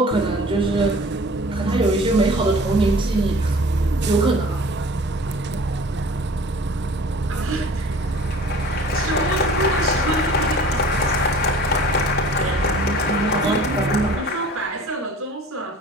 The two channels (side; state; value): both; normal; correlation 0.46